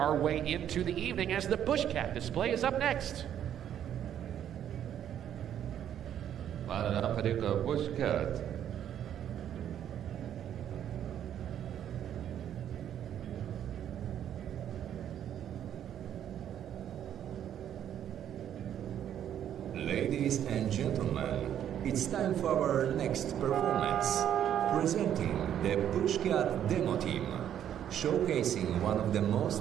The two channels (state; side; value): quieter; left; 10.1 dB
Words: way into the evening as the Bushcat display is up next. معنا فريق بوشكات. Ladies and gentlemen, it's time for our next performance. Presenting the Bushcat Demo Team, showcasing one of the most